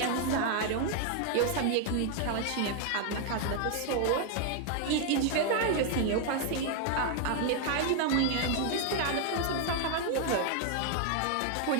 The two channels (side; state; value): both; different; correlation 0.00